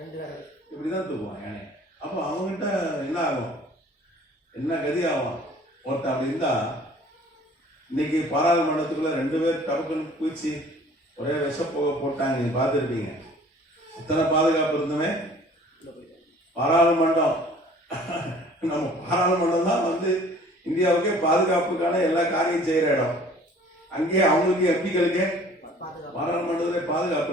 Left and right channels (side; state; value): both; normal; correlation 0.51